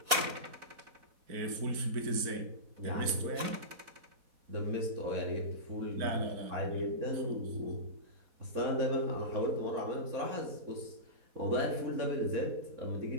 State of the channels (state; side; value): late; left; 4.1 ms